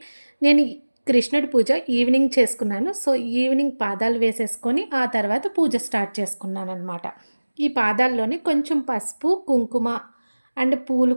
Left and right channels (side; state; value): both; inverted; correlation -1.00